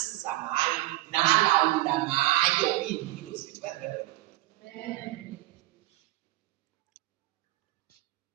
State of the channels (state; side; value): quieter; left; 18.0 dB